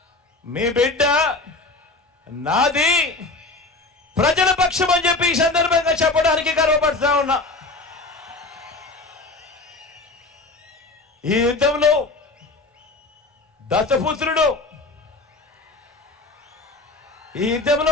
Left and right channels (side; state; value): right; quieter; 3.2 dB